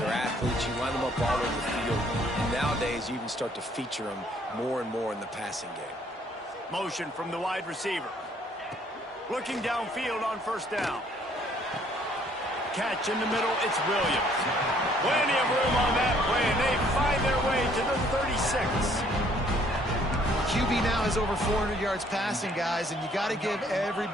are athletes. You line them up all over the field. And nowadays, you even start to feature them more and more in the passing game. Motion from the wide receiver. Looking downfield on first down. Catch in the middle, it's Williams. Plenty of room on that play, and they find their way to the 36. QB now has over 400 yards passing, guys, and you got to give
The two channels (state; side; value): normal; both; correlation 0.62